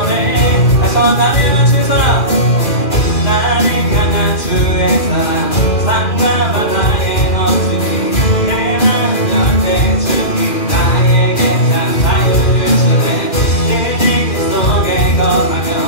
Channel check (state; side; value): late; right; 2.4 ms